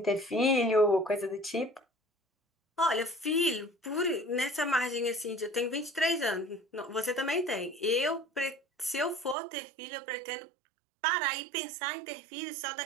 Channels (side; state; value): left; drops out; at 9.3 s